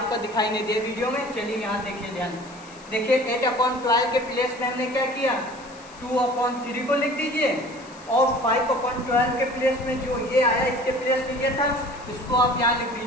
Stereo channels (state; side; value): noise; left; hiss, 22 dB below the sound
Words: दिखाई नहीं दे वीडियो में। चलिए यहाँ देखिए, ध्यान देखिए, 8/12 के प्लेस में हमने क्या किया, 2/3 को लिख दीजिए और 5/12 के प्लेस में जो ये आया इसके प्लेस में ये था, इसको आप यहाँ लिख